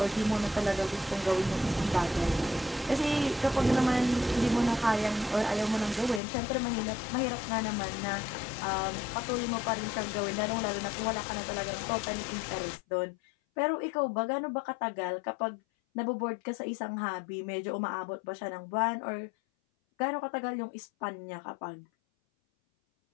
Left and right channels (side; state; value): right; drops out; at 6.2 s